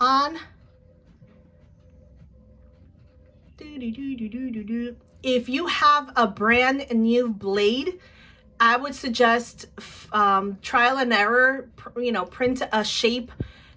If you have a brand new blade, I would suggest trial and error, you know, print a shape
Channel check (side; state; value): both; identical; correlation 1.00